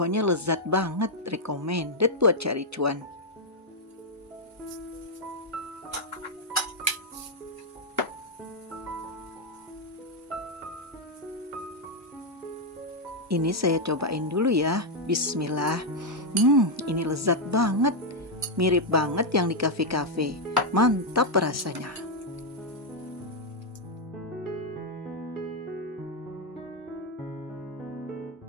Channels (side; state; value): both; normal; correlation 0.00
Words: lezat banget, recommended buat cari cuan. Ini saya cobain dulu ya. Bismillah. Ini lezat banget. Mirip banget yang di kafe-kafe. Mantap rasanya.